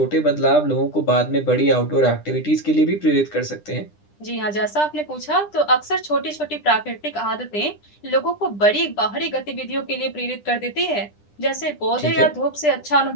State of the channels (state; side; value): late; right; 9.9 ms